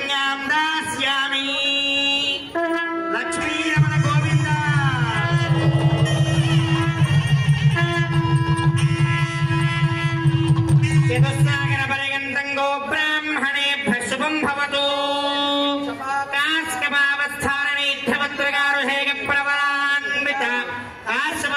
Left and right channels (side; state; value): both; identical; correlation 1.00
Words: दास्यामि लक्ष्मी रमण गोविंद चतुस्सागर पर्यन्तं गो ब्राह्मणेभ्यः शुभं भवतु कास्कमावस्थानैध्यवत्रगारुषेक प्रवरान्वित